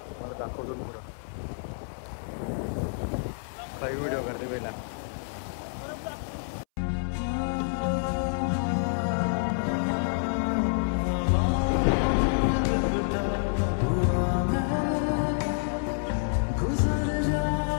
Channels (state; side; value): silent; right; 59 dB below the other